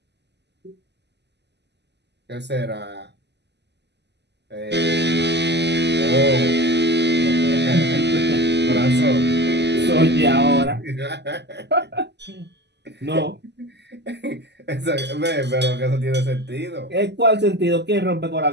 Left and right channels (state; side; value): late; left; 0.50 ms